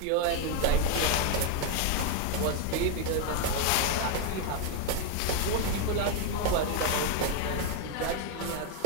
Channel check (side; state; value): both; different; correlation 0.01